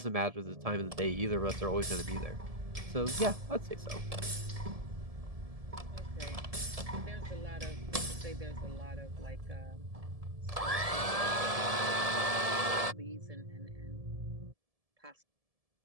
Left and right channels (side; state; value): left; late; 1.7 ms